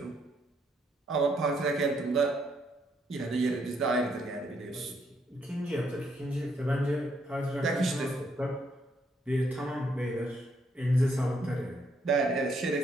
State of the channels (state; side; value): normal; both; correlation 0.73